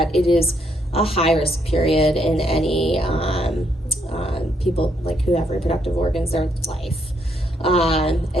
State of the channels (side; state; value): both; normal; correlation 0.74